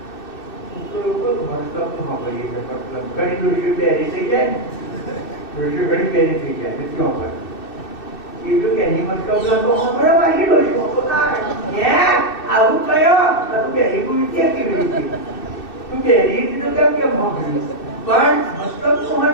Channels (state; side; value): late; right; 2.6 ms